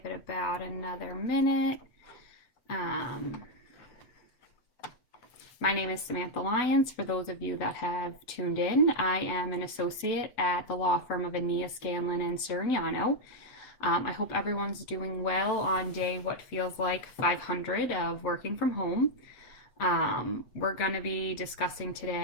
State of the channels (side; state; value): right; late; 8.0 ms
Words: it about another minute. My name is Samantha Lyons. For those of you that have tuned in, I am an associate at the law firm of Ania, Scanlon, and Sirignano. I hope everyone's doing well on day what feels like 500 of working from home. We're going to be discussing